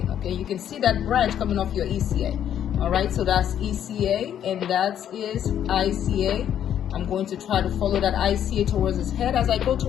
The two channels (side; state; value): right; quieter; 10.0 dB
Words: Okay, you can see that branch coming off your ECA. All right, so that's ECA and that is ICA. I'm going to try to follow that ICA towards his head. As I go